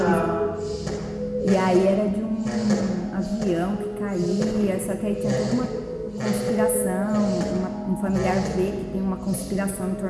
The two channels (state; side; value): identical; both; correlation 1.00